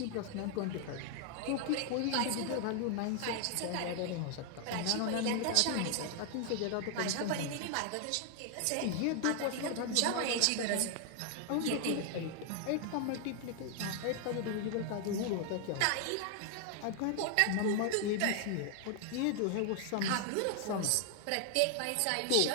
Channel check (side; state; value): both; different; correlation 0.00